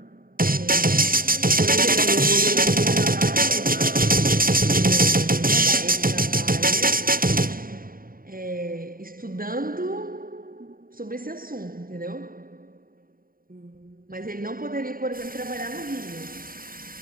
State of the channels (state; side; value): late; left; 0.41 ms